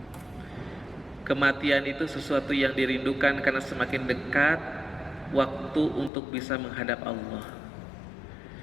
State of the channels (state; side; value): drops out; right; at 6.1 s